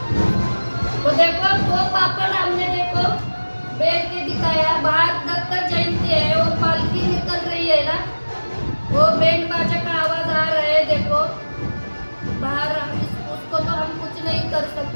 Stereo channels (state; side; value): inverted; both; correlation -1.00